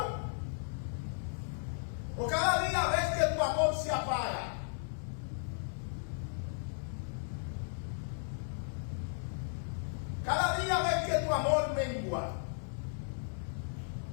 ¿O cada día ves que tu amor se apaga? Cada día ves que tu amor mengua.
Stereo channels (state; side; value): silent; right; digital silence